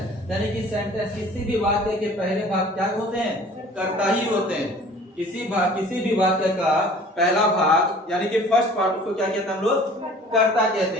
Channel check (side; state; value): both; normal; correlation 0.48